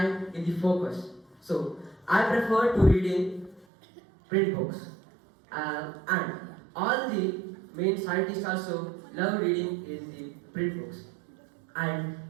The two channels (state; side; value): drops out; left; at 3.7 s